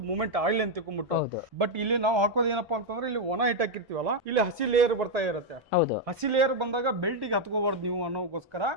ಮೂಮೆಂಟ್ ಆಯಿಲ್ ಅಂತ ತಿಳ್ಕೊಂಡ್ಬಿಟ್ಟು. ಬಟ್ ಇಲ್ಲಿ ನಾವು ಹಾಕೋದು ಏನಪ್ಪಾ ಅಂತಂದ್ರೆ, ಇಲ್ಲಿ ಒಣ ಹಿಟ್ ಹಾಕಿರ್ತೀವಲ್ಲ, ಇಲ್ಲಿ ಹಸಿ ಲೇಯರ್ ಬರ್ತಾ ಇರುತ್ತೆ. ಹಸಿ ಲೇಯರ್ ಬಂದಾಗ ಬೆಲ್ಟಿಗೆ ಹತ್ಕೋಬಾರ್ದು ನೀವು ಅನ್ನೋಗೋಸ್ಕರ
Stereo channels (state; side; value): normal; both; correlation 0.01